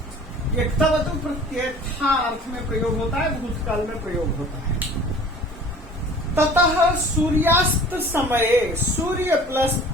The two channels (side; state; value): both; normal; correlation 0.46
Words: ये तवतु प्रत्यय था अर्थ में प्रयोग होता है, भूतकाल में प्रयोग होता है। ततः सूर्यास्त समय, सूर्य प्लस